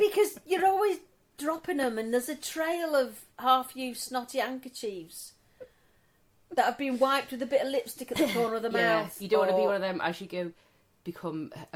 you're always dropping them, and there's a trail of half-used snotty handkerchiefs that have been wiped with a bit of lipstick at the corner of the mouth. You don't want to be or- one of them as you go become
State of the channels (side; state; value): both; identical; correlation 1.00